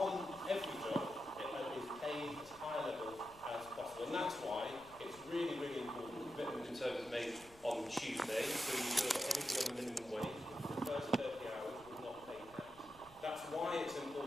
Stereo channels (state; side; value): noise; left; rumble, 23 dB below the sound